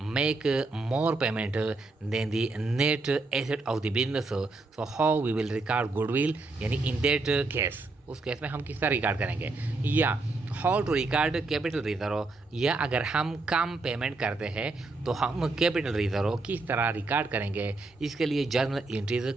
make more payment than the net asset of the business. So how we will record goodwill यानी in that case उस case में हम किस तरह record करेंगे, या how to record capital reserve, या अगर हम कम पेमेंट करते हैं तो हम कैपिटल रिजर्व किस तरह रिकॉर्ड करेंगे, इसके लिए जर्नल एंट्रीज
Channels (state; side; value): quieter; left; 3.4 dB